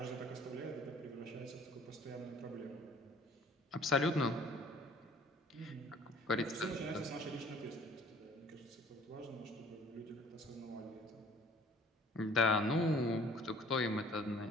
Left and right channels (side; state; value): both; normal; correlation 0.53